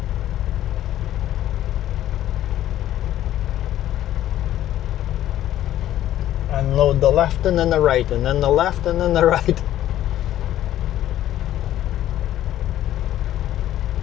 Unload the left and then the right, and then the left and then the right.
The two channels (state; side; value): quieter; right; 12.7 dB